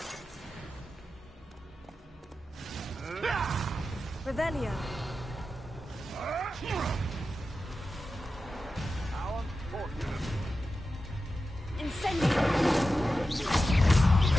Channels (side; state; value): both; normal; correlation 0.92